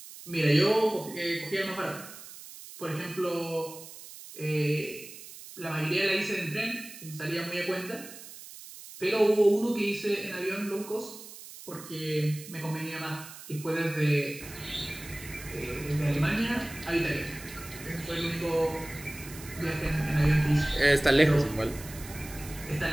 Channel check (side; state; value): right; noise; hiss, 15 dB below the sound